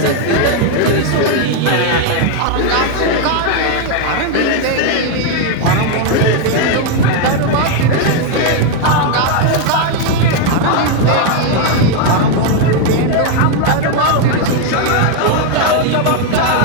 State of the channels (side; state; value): both; different; correlation 0.01